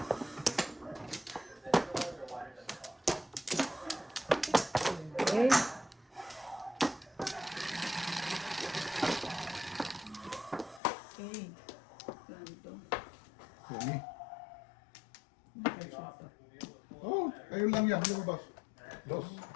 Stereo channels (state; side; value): drops out; right; at 10.8 s